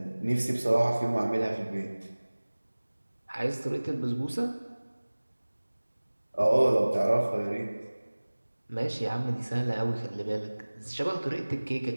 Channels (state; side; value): inverted; both; correlation -1.00